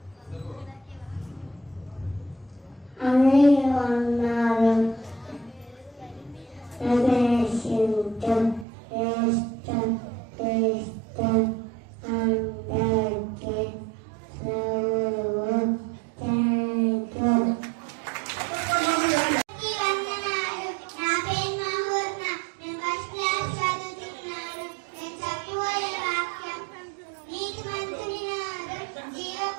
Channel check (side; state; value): left; drops out; at 8.7 s